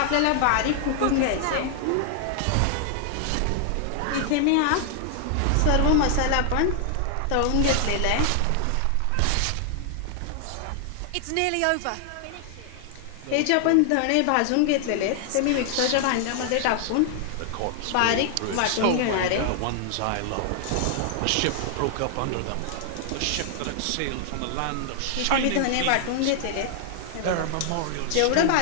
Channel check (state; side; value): different; both; correlation 0.00